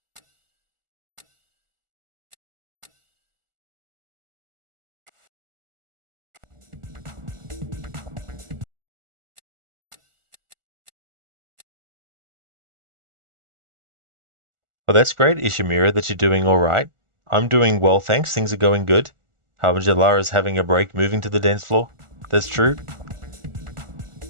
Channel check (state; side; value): late; left; 1.4 ms